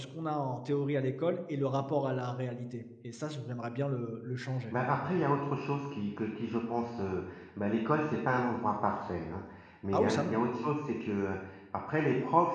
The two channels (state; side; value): identical; both; correlation 1.00